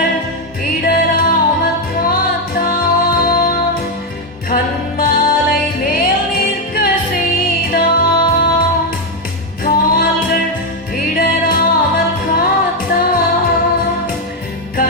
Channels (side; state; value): both; normal; correlation 0.04